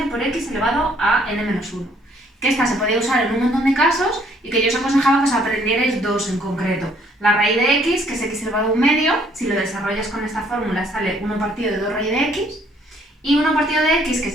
por x elevado a n menos 1. Que esta se podía usar en un montón de casos y que yo os aconsejaba que os aprendierais dos en concreto. La raíz de x, que es x elevado a un medio, si lo desarrollas con esta fórmula sale 1 partido de 2 raíz de x, y 1 partido de x, que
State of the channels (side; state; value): both; normal; correlation 0.64